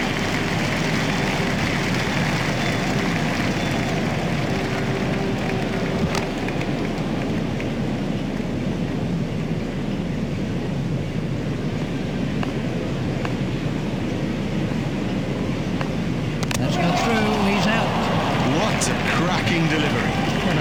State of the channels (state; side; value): identical; both; correlation 1.00